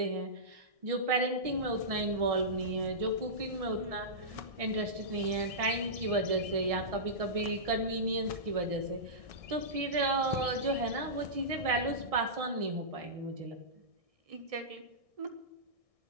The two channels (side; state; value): left; late; 1.6 ms